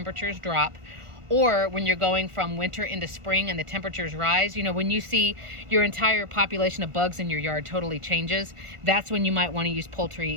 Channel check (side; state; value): left; late; 1.4 ms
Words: drop, or when you're going from winter into spring and the temperatures rise, you know, when you see your entire population of bugs in your yard totally changes, that's when you might want to use